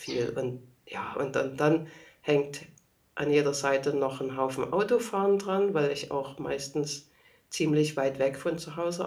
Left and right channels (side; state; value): both; identical; correlation 1.00